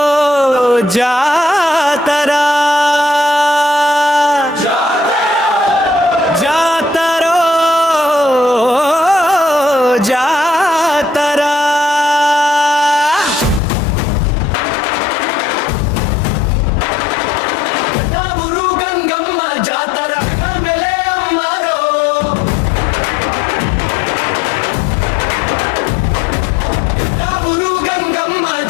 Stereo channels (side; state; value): right; drops out; at 13.6 s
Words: జాతరా జాతరో జాతరా ఊరు గంగమ్మ జాతర మెలే అమ్మారో ఊరు గంగమ్మ